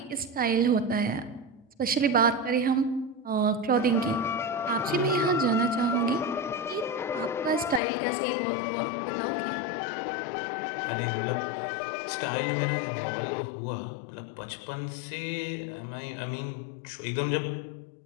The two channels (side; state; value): right; drops out; at 7.8 s